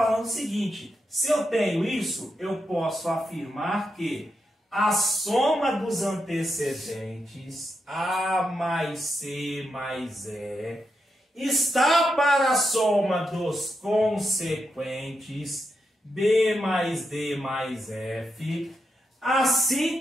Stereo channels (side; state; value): both; normal; correlation 0.85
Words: o seguinte: se eu tenho isso, eu posso afirmar que a soma dos antecedentes, A mais C mais E, está para a soma dos consequentes, B mais D mais F,